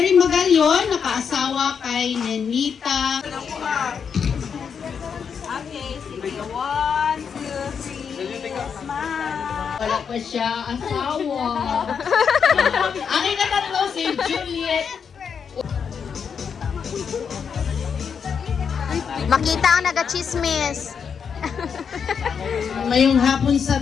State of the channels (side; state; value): right; quieter; 6.7 dB